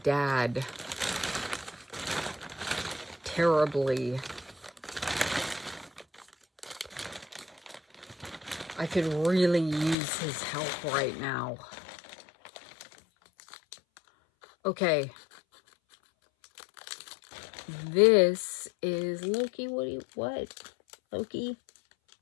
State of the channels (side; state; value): right; drops out; at 10.0 s